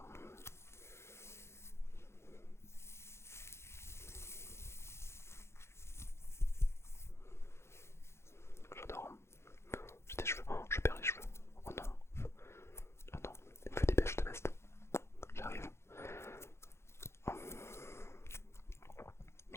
J'adore. J'ai des cheveux. Oh, je perds les cheveux. Oh non. Oh non. Il me fait des bêches de veste. J'arrive. Oh.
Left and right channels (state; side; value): late; right; 0.13 ms